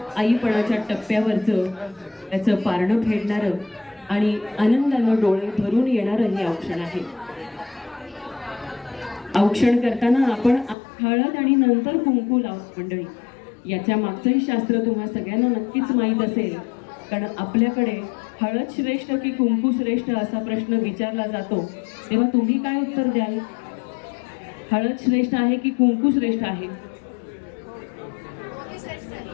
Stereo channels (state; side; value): drops out; right; at 10.8 s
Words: आईपणाच्या टप्प्यावरचं त्याचं पारणं फेडणारं आणि आनंदानं डोळे भरून येणारं हे औक्षण आहे. औक्षण करताना आपण हळद आणि नंतर कुंकू लावतो मंडळी. याच्या मागचंही शास्त्र तुम्हा सगळ्यांना नक्कीच माहीत असेल, कारण आपल्याकडे हळद श्रेष्ठ की कुंकू श्रेष्ठ असा प्रश्न विचारला जातो, तेव्हा तुम्ही काय उत्तर द्याल? हळद श्रेष्ठ आहे की कुंकू श्रेष्ठ आहे?